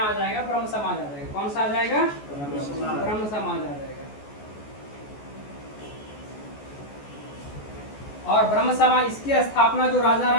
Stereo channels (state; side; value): late; right; 14 ms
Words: आ जाएगा ब्रह्म समाज आ जाएगा। कौन सा आ जाएगा? ब्रह्म समाज आ जाएगा। और ब्रह्म समाज इसकी स्थापना जो